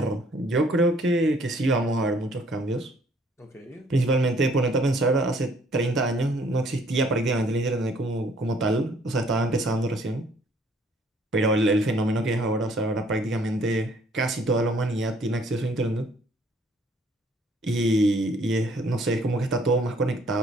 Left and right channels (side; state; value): both; normal; correlation 0.61